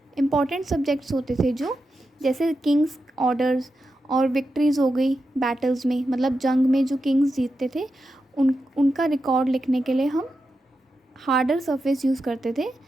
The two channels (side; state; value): both; normal; correlation 0.89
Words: इम्पॉर्टेंट सब्जेक्ट्स होते थे, जो जैसे किंग्स ऑर्डर्स और विक्ट्रीज़ हो गई बैटल्स में, मतलब जंग में जो किंग्स जीतते थे उनका रिकॉर्ड लिखने के लिए हम हार्डर सरफेस यूज़ करते थे,